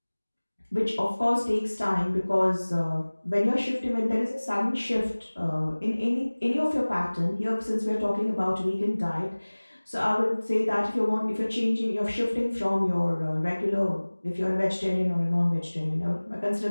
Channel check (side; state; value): both; inverted; correlation -1.00